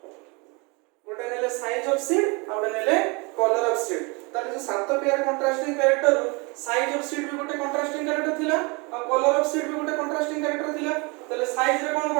गोटे नेले साइज ऑफ सीड और नेले कलर ऑफ सीड ताले जो सात pair contrasting character size of seed भी गोटे कंट्रास्टिंग कैरेक्टर थिला और कलर ऑफ सीड भी गोटे कंट्रास्टिंग कैरेक्टर थिला ताले साइज रे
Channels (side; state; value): left; quieter; 29.3 dB